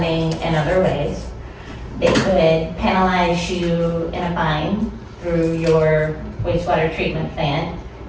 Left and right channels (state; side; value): identical; both; correlation 1.00